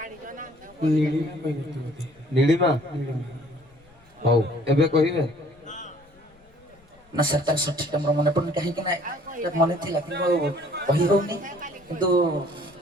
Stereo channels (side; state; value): left; noise; rumble, 29 dB below the sound